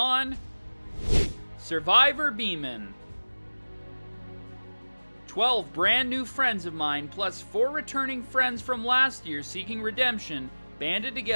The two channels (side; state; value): both; inverted; correlation -1.00